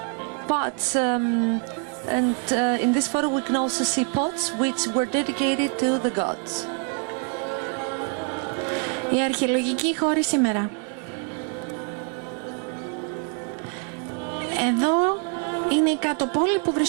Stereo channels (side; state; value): left; quieter; 39.2 dB